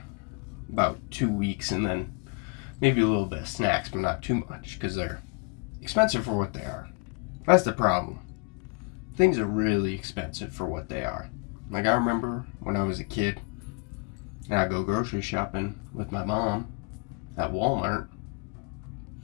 about 2 weeks, and then maybe a little bit of snacks, but not too much, because they're expensive for what they are. That's the problem. Things are really expensive for what they are. Like, I remember when I was a kid, and I'd go grocery shopping with my mom at Walmart,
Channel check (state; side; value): quieter; right; 32.7 dB